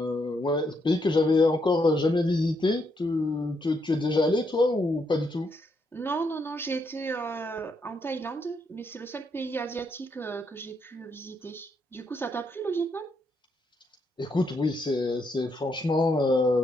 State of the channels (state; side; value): normal; both; correlation 0.77